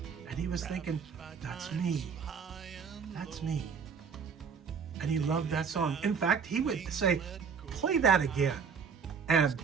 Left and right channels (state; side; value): quieter; left; 6.1 dB